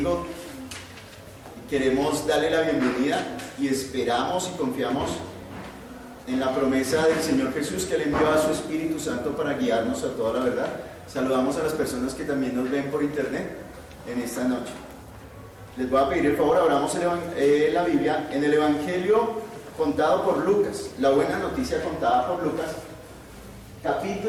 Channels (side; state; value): both; identical; correlation 1.00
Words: Queremos darle la bienvenida y esperamos y confiamos en la promesa del Señor Jesús, que le envió a su Espíritu Santo para guiarnos a toda la verdad. Saludamos a las personas que también nos ven por internet en esta noche. Les voy a pedir el favor, abramos la Biblia en el Evangelio contado por Lucas, la buena noticia contada por Lucas,